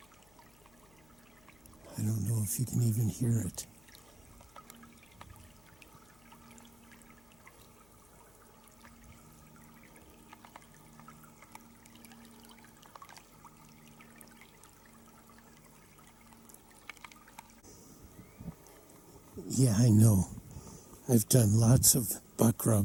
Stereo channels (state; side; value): noise; left; hum, 28 dB below the sound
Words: I don't know if you can even hear it. Yeah, I know. I've done lots of buck